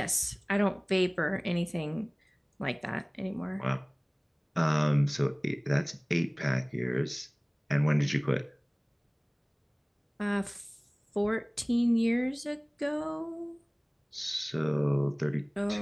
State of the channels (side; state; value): both; identical; correlation 1.00